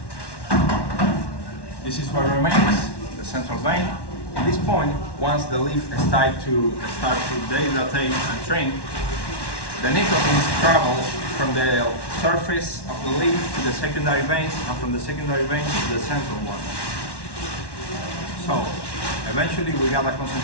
This is what remains, the central vein. At this point, once the leaf start to dehydrate and shrink, the nicotine travels from the surface of the leaf to the secondary veins, and from the secondary veins to the central one. So, eventually we got a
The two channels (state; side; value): late; right; 1.1 ms